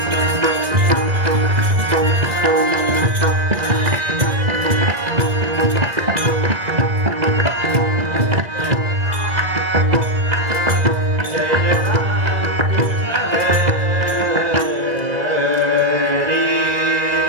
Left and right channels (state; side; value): late; left; 2.0 ms